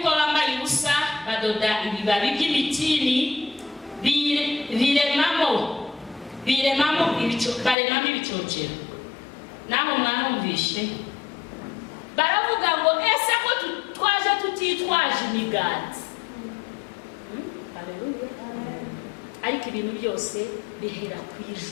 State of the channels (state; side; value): drops out; right; at 7.8 s